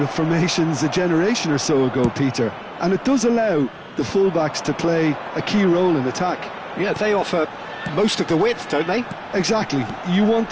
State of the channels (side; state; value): both; identical; correlation 1.00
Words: of formations a generation or so ago, Peter, and it does allow the fullbacks to play a key role in attack. Yeah, they offer most of the width, don't they? Exactly. You want